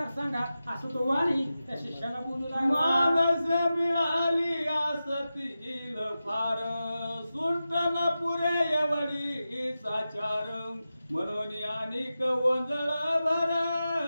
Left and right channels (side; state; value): both; inverted; correlation -0.93